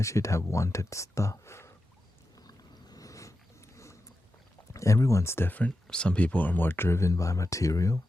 should have wanted stuff. Everyone's different. Some people are more driven by material.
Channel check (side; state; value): both; normal; correlation 0.90